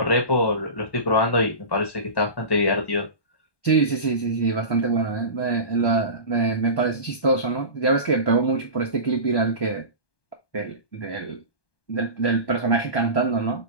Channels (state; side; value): late; right; 1.2 ms